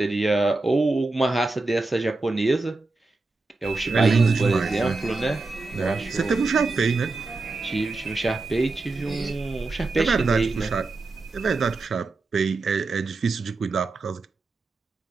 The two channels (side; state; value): left; quieter; 3.5 dB